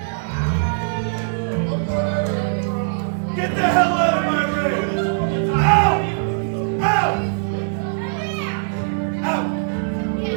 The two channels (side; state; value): left; silent; digital silence